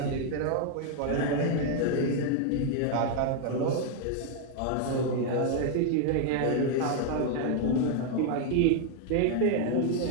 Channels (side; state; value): both; different; correlation 0.00